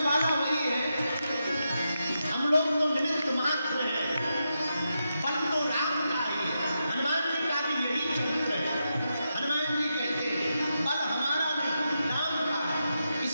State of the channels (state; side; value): inverted; both; correlation -0.86